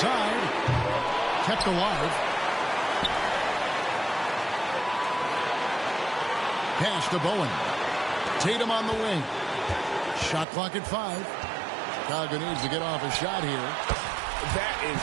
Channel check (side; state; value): left; drops out; at 10.5 s